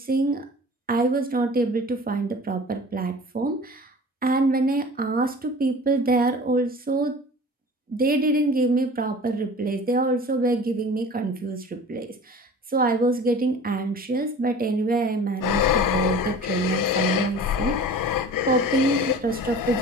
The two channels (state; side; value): normal; both; correlation 0.41